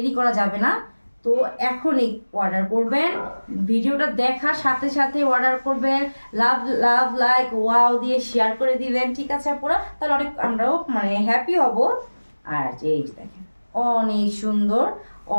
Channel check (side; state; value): both; inverted; correlation -1.00